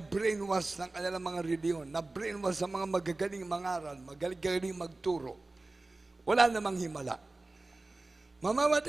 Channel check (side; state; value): left; quieter; 3.1 dB